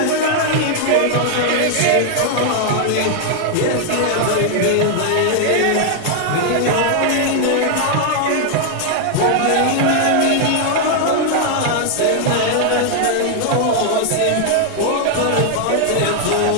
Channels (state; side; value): different; both; correlation 0.00